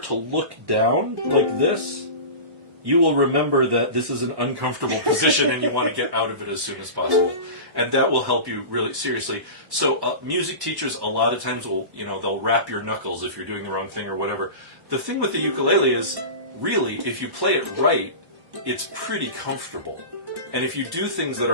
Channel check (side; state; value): left; late; 1.1 ms